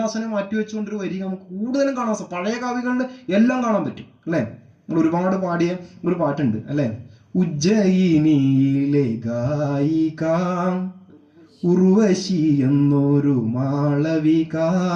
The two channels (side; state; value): both; identical; correlation 1.00